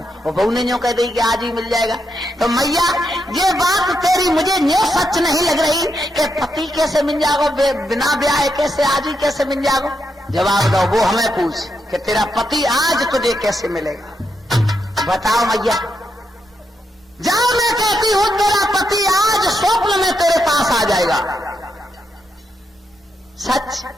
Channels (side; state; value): both; normal; correlation 0.82